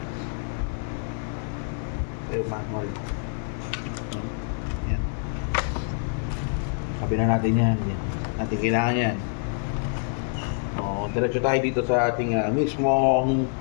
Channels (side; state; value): right; silent; 59 dB below the other